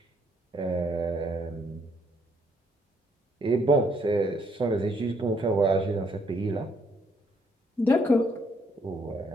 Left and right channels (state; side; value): normal; both; correlation 0.70